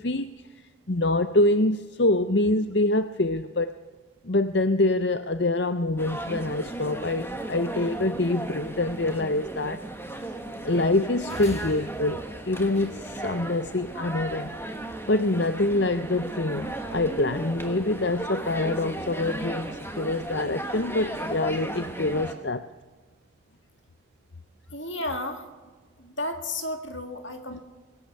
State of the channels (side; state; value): both; normal; correlation 0.17